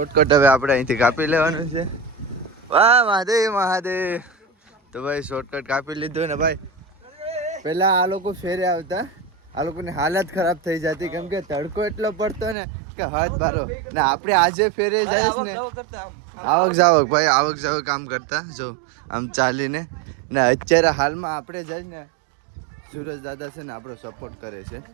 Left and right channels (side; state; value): left; drops out; at 12.6 s